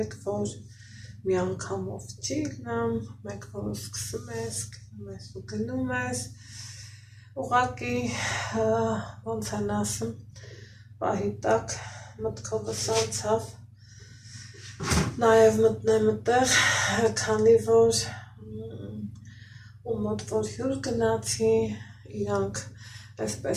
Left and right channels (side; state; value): both; identical; correlation 1.00